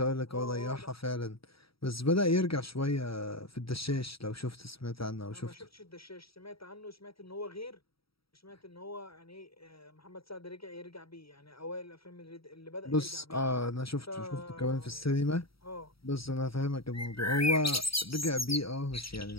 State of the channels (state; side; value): late; right; 0.75 ms